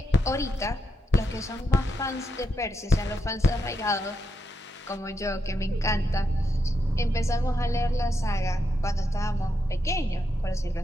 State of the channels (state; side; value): normal; both; correlation 0.83